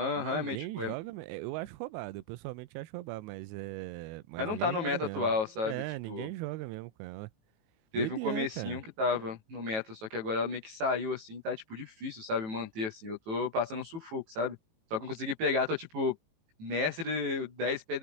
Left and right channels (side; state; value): left; late; 18 ms